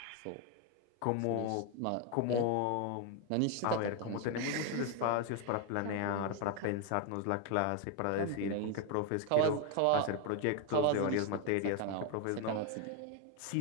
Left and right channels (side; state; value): both; different; correlation 0.01